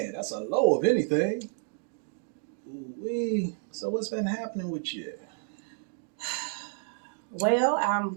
that's a low of anything. Ooh-wee. So what's been happening with you? Well, I'm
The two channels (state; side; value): silent; left; 58 dB below the other